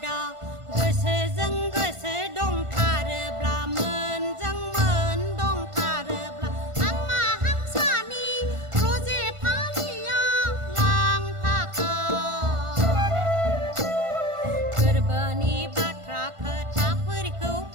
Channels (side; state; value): left; late; 1.5 ms